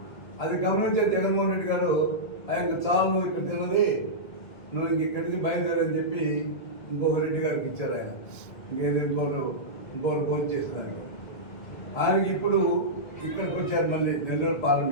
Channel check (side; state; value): right; late; 1.7 ms